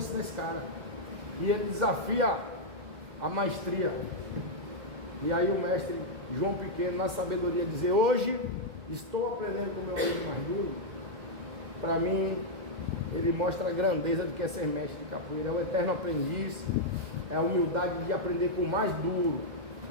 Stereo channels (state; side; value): late; left; 2.1 ms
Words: esse cara? e ele desafia a maestria. E aí o mestre João Pequeno, na sabedoria, dizer: hoje estou aprendendo com o meu aluno mais duro. Para mim, ele mostra a grandeza de que é ser mestre de capoeira, é o eterno aprendiz, é a humildade de aprender com o mais duro,